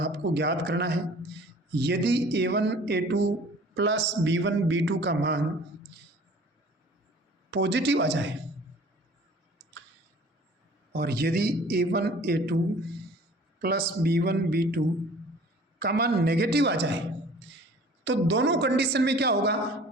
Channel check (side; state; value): both; normal; correlation 0.49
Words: ज्ञात करना है। यदि A1 A2 plus B1 B2 का मान पॉजिटिव आ जाए और यदि A1 A2 plus B1 B2 का मान नेगेटिव आ जाए, तो दोनों कंडीशन में क्या होगा,